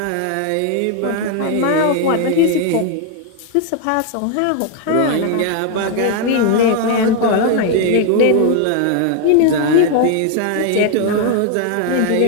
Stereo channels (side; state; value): both; different; correlation 0.01